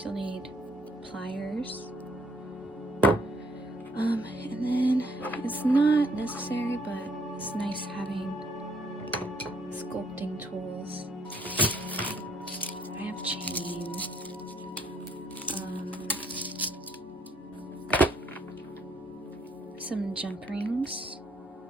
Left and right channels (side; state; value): both; normal; correlation 0.68